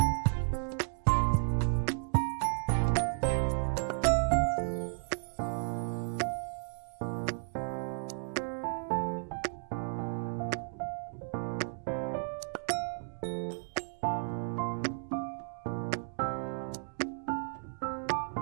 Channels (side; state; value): left; silent; digital silence